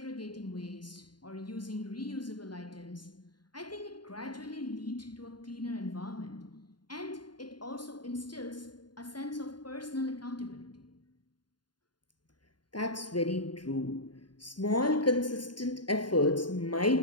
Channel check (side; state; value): right; late; 0.71 ms